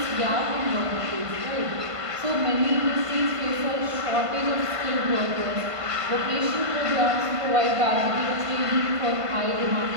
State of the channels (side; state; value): left; late; 1.5 ms